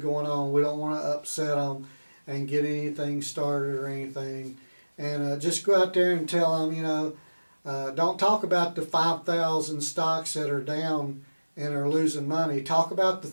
on. We don't want to upset them and get anything started or anything. And just go out there and tell them, don't talk about the 5,000 stocks that are down and are losing money. Talk about the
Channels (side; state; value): both; inverted; correlation -1.00